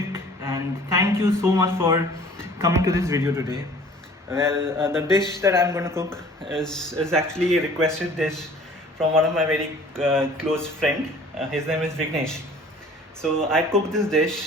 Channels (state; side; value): normal; both; correlation 0.50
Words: and thank you so much for coming to this video today. Well, the dish that I'm going to cook is actually a requested dish from one of my very close friend. His name is Vignesh. So I cooked this